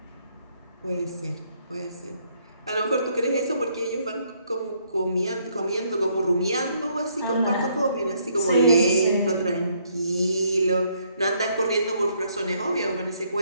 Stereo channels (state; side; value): inverted; both; correlation -0.70